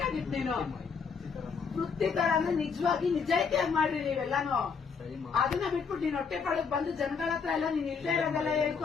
ನೀನು. ವೃತ್ತಿ ತರ ಅಂದ್ರೆ ನಿಜವಾಗಿ ನಿಜಾಯಿತಿಯಾಗಿ ಮಾಡ್ರಿ ನೀವೆಲ್ಲಾನು. ಅದನ್ನ ಬಿಟ್ಬಿಟ್ಟು ನೀನ್ ಹೊಟ್ಟೆ ಪಾಳಕ್ ಬಂದು ಜನಗಳ ಹತ್ರ ಎಲ್ಲ ನೀನ್ ಇಲ್ಲದೆ ಇರೋದೆಲ್ಲ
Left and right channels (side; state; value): right; quieter; 5.8 dB